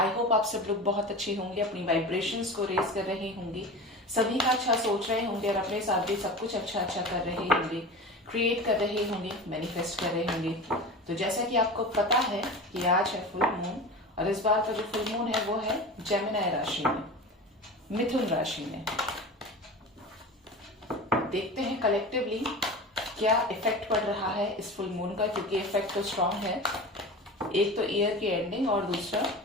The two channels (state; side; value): normal; both; correlation 0.31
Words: होप आप सब लोग बहुत अच्छे होंगे, अपनी वाइब्रेशंस को रेज कर रहे होंगे, सभी का अच्छा सोच रहे होंगे और अपने साथ भी सब कुछ अच्छा अच्छा कर रहे होंगे, क्रिएट कर रहे होंगे, मैनिफेस्ट कर रहे होंगे। तो जैसा कि आपको पता है कि आज है फुल मून और इस बार का जो फुल मून है वो है जेमिनी राशि में, मिथुन राशि में। देखते हैं कलेक्टिवली क्या इफेक्ट पड़ रहा है इस फुल मून का, क्योंकि इफेक्ट तो स्ट्रांग है। एक तो ईयर की एंडिंग और दूसरा